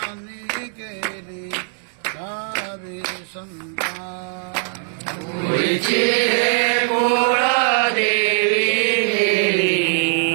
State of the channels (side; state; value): left; silent; 62 dB below the other